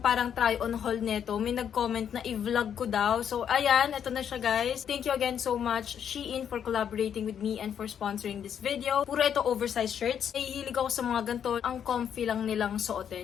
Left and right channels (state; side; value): quieter; right; 8.6 dB